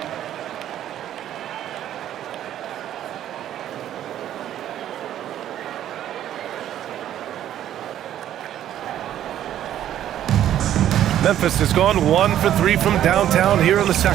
Memphis has gone 1 for 3 from downtown here in the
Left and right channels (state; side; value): quieter; left; 11.5 dB